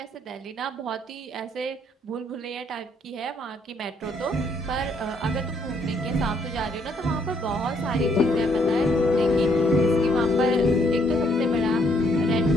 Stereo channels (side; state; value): both; normal; correlation 0.69